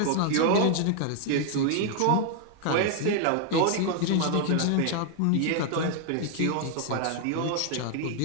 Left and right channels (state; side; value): different; both; correlation 0.00